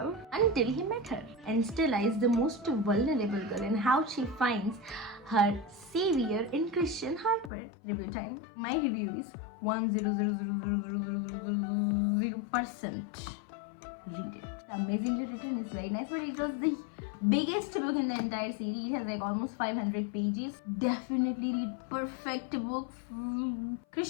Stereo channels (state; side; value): drops out; right; at 7.5 s